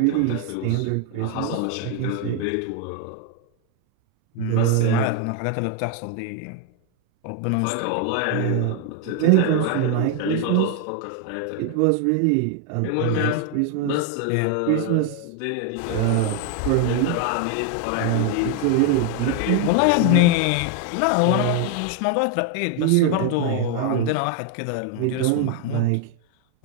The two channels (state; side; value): different; both; correlation 0.01